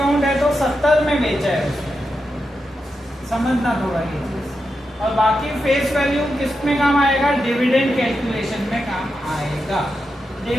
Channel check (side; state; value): both; normal; correlation 0.87